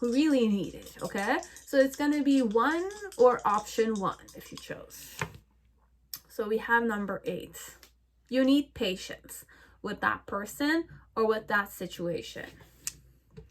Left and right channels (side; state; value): both; identical; correlation 1.00